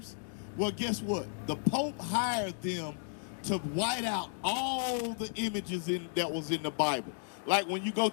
Well, guess what? The Pope hired them to white out all the images that was in the Bible. Like when you go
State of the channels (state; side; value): silent; right; digital silence